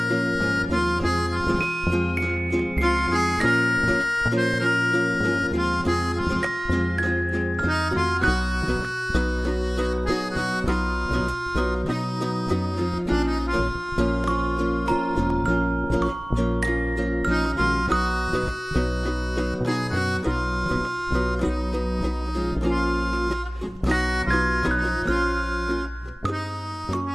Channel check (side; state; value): both; normal; correlation 0.98